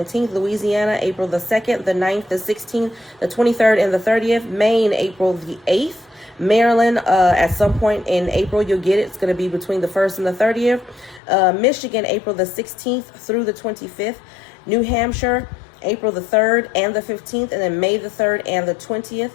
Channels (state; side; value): drops out; right; at 11.2 s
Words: Louisiana, April the 2nd, the 9th, the 16th, the 23rd, and the 30th. Maine, April the 8th. Maryland, at some point in April, you'll get it. It's going to be between the 1st and the 30th. Michigan, April the 16th through the 25th. New Hampshire, April the 3rd and the 15th, and then May the 3rd and the 20th.